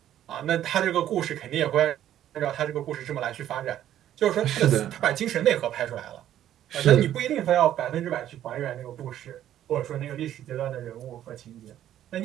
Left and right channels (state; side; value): quieter; left; 11.7 dB